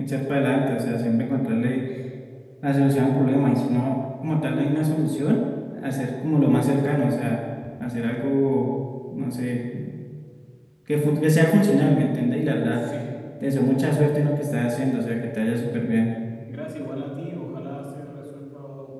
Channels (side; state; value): both; identical; correlation 1.00